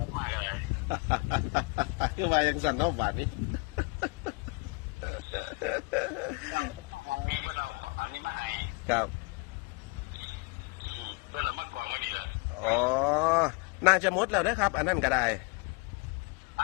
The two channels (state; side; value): quieter; right; 28.1 dB